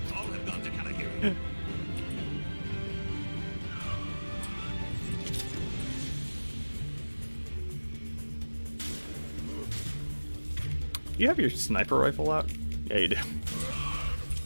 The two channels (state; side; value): inverted; both; correlation -1.00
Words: You have your sniper rifle out? Yeah, you do.